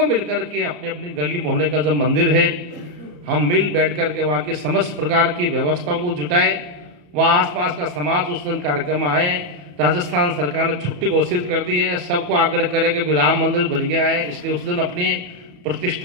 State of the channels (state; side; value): late; left; 34 ms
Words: मिलकर के अपने अपने गली मोहल्ले का जो मंदिर है, हम मिल बैठ करके वहाँ की समस्त प्रकार की व्यवस्थाओं को जुटाए, वहाँ आसपास का समाज उस दिन कार्यक्रम आए। राजस्थान सरकार ने छुट्टी घोषित कर दी है, सबको आग्रह करे कि राम मंदिर बन गया है, इसलिए उस दिन अपने